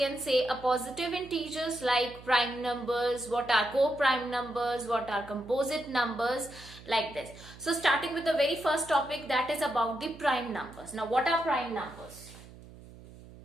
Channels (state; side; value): noise; right; hum, 19 dB below the sound